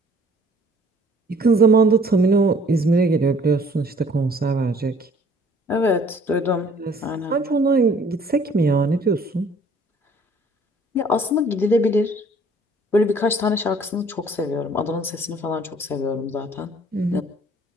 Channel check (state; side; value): normal; both; correlation 0.56